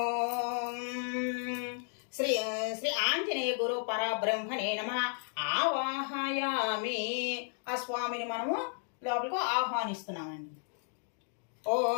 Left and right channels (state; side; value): silent; right; 55 dB below the other